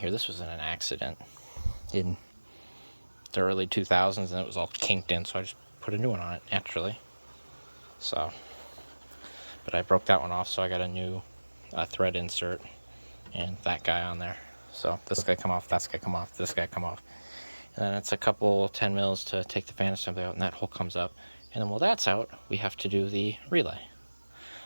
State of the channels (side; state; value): both; inverted; correlation -1.00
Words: this was in an accident in the early 2000s, and it was all kinked in, so I just put a new one on it naturally. So, but I broke that one off, so I got a new thread insert and that guy on there. So this guy come off, that guy come off, this guy come off, and then it's a couple 10 mils to take the fan assembly out, and that hole comes up. And then while that's out, we have to do the relay,